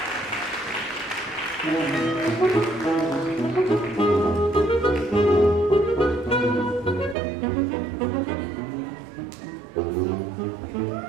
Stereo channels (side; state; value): left; drops out; at 7.2 s